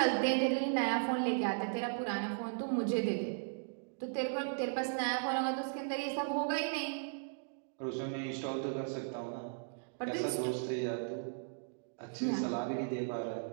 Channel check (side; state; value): left; silent; digital silence